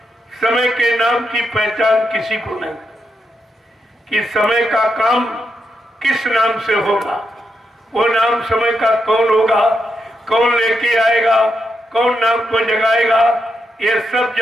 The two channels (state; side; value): normal; both; correlation 0.83